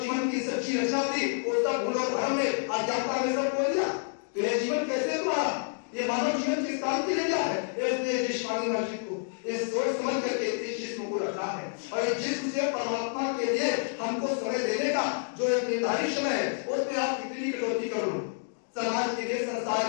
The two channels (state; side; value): silent; right; digital silence